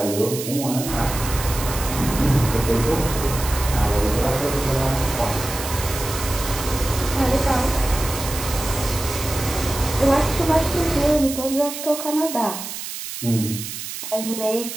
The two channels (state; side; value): noise; right; hiss, 8 dB below the sound